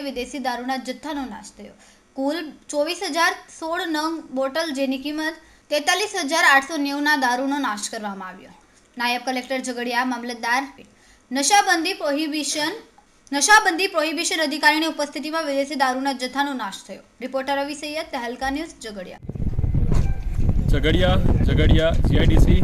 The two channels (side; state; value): both; identical; correlation 1.00